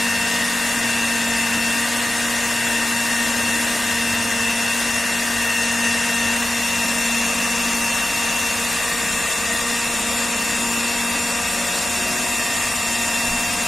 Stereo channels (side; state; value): both; normal; correlation 0.94